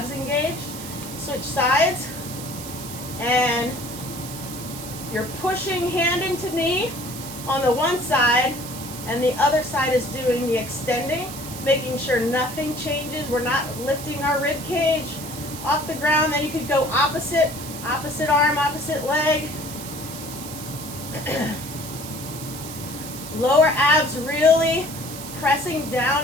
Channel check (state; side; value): noise; right; hiss, 11 dB below the sound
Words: engaged. Switch sides, and you're pushing hand into knee on the one side, and the other side is doing the extending, making sure nothing changes. We're not lifting our rib cage off the ground. Then you could go opposite arm, opposite leg. Lower abs really pressing